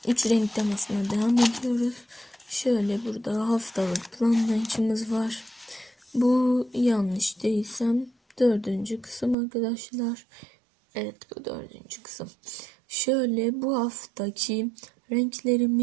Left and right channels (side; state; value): left; drops out; at 9.3 s